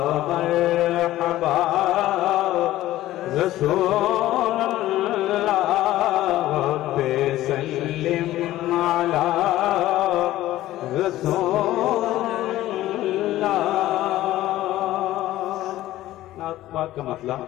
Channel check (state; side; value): quieter; right; 15.1 dB